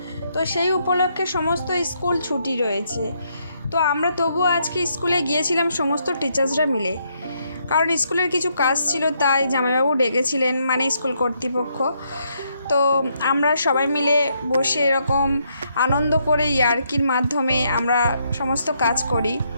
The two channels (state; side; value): inverted; both; correlation -0.75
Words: তো সেই উপলক্ষে সমস্ত স্কুল ছুটি রয়েছে। তো আমরা তবুও আজকে স্কুলে গিয়েছিলাম সমস্ত টিচার্সরা মিলে, কারণ স্কুলের কিছু কাজ ছিল, তাই জামাইবাবু ডেকেছিলেন, মানে স্কুল কর্তৃপক্ষ। তো আমরা সবাই মিলে বসে এরকম আনন্দ করে ইয়ার্কির মাধ্যমে আমরা সমস্ত কাজ করি।